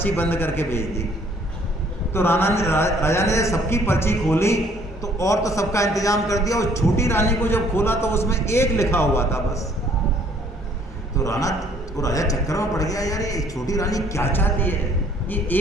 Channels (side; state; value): both; normal; correlation 0.60